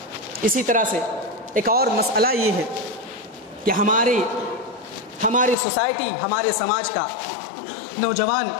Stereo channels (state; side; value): drops out; right; at 5.6 s